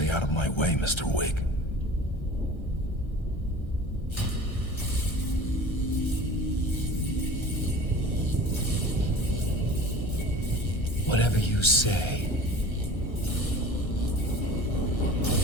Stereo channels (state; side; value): late; right; 1.3 ms